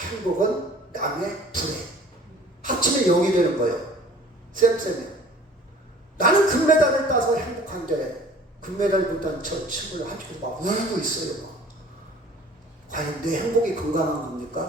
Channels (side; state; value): both; normal; correlation 0.49